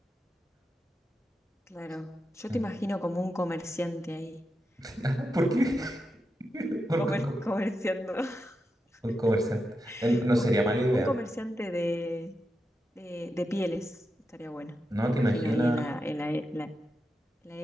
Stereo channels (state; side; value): normal; both; correlation 0.87